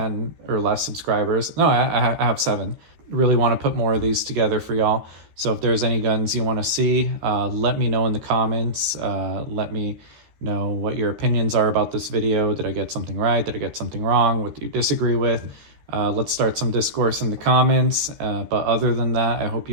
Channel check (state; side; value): late; left; 13 ms